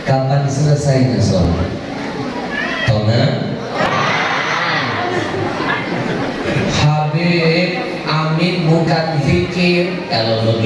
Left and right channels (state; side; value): identical; both; correlation 1.00